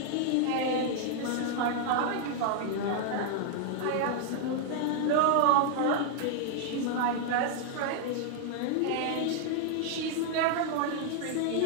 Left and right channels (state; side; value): different; both; correlation 0.00